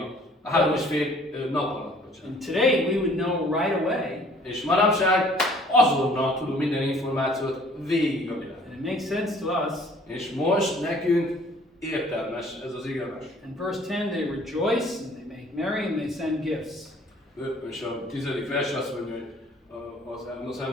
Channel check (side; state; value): both; normal; correlation 0.56